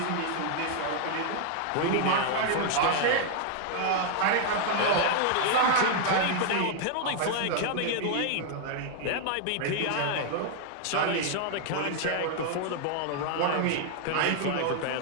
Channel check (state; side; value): different; both; correlation 0.00